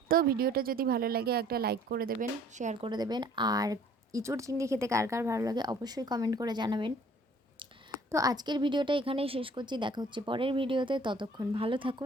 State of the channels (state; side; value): normal; both; correlation 0.56